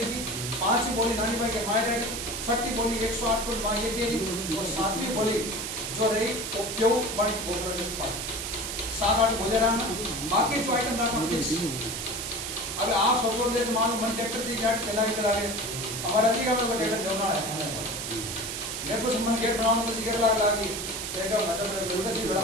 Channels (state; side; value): noise; right; hiss, 5 dB below the sound